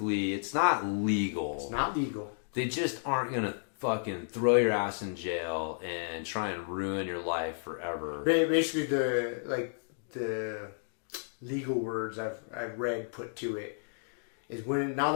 it's not legal. It's not legal. They just aren't going to fucking throw your ass in jail and try and ruin your life forever. Basically, the legal words I've read put to it is now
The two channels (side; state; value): right; silent; digital silence